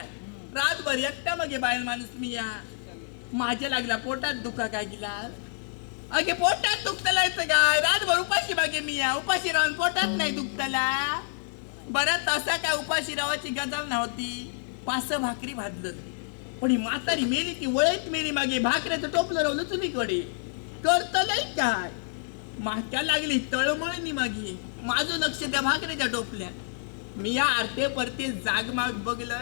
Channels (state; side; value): silent; right; digital silence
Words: रातभर एकटा मग बाहेर माणूस मी या माझ्या लागला पोटात दुखा काय गेला अगे पोटात दुखतला येतं काय रातभर उपाशी बागे मी या उपाशी राहून पोटात नाही दुखतला. बरं तसा काय उपाशी रावाची गजाल नव्हती. 5 भाकरी भाजलं पण ही म्हातारी मेली ती वळत मेली मागे भाकऱ्याचं टोपलं रावलं चुलीकडे करत नाही काय माक्या लागली तळमळणी मागे माझं लक्ष त्या भाकऱ्याच्या टोपल्या. मी या आरते परते जागमाग